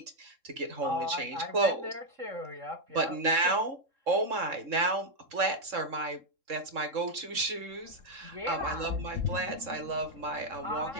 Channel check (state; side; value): late; left; 3.7 ms